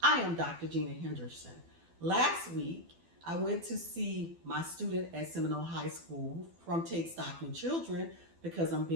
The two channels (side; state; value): left; late; 12 ms